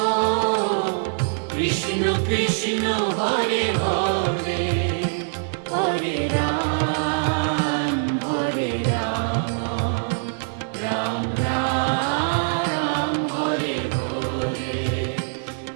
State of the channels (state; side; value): silent; left; digital silence